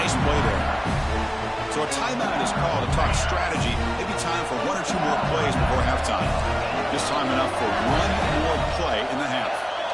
play there. So a timeout is called to talk strategy. Maybe time for 1 or 2 more plays before halftime. Just time enough for 1 more play in the half.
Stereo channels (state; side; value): identical; both; correlation 1.00